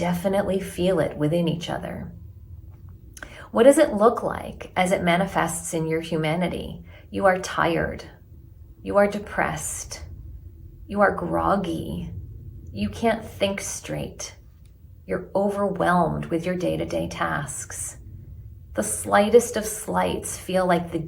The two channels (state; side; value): identical; both; correlation 1.00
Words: feel it within each other. What does it look like as it manifests in your humanity? You are tired. You are depressed. You are groggy. You can't think straight. You're overwhelmed with your day-to-day tasks. The slightest of slights feel like the